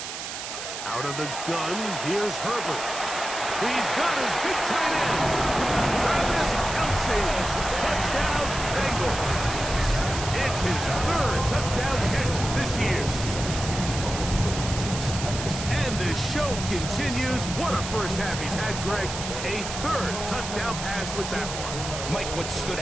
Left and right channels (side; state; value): right; noise; hiss, 7 dB below the sound